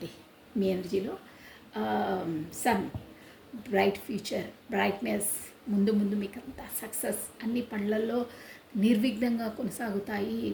మీ ఎనర్జీలో. సన్, బ్రైట్ ఫ్యూచర్, బ్రైట్నెస్, ముందు మీకు అంతా సక్సెస్, అన్ని పనులలో నిర్విఘ్నంగా కొనసాగుతాయి.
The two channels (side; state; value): both; identical; correlation 1.00